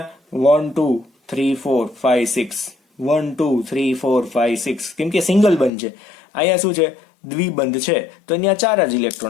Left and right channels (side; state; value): right; drops out; at 5.7 s